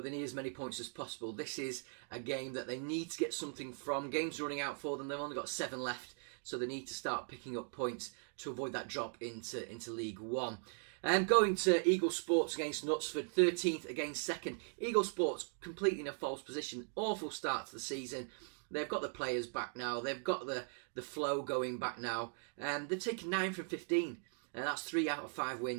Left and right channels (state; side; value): silent; left; 52 dB below the other